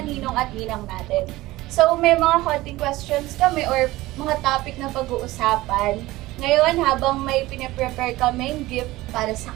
ninong at ninang natin. So, may mga konting questions kami or mga topic na pag-uusapan. Ngayon, habang may pinaprepare kaming gift para sa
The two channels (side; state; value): left; quieter; 18.3 dB